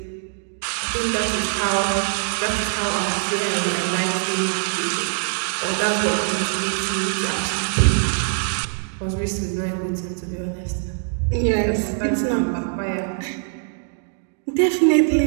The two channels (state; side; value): silent; left; digital silence